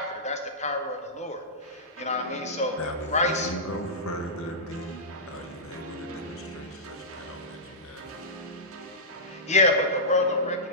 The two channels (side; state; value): both; normal; correlation -0.14